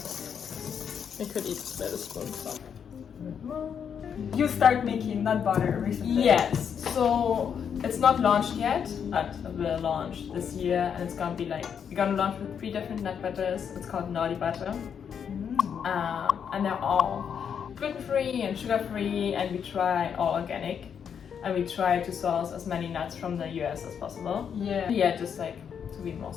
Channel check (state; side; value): quieter; right; 7.6 dB